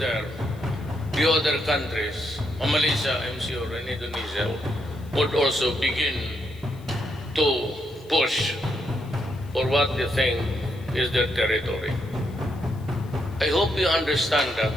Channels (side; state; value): left; noise; hiss, 27 dB below the sound